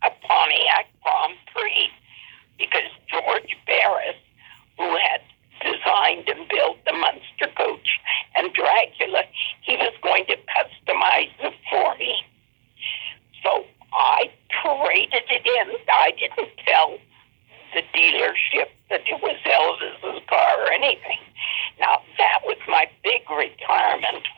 a Pontiac Grand Prix because George Barris, who had designed and built the Munster coach and Dracula, he was going to customize it for me. So I traded it in. I didn't tell the dealership that it was Elvis's car or anything. Now, that was my big retirement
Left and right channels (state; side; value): silent; left; digital silence